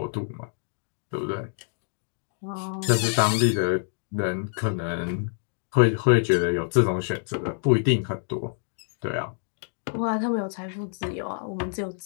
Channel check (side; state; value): right; silent; digital silence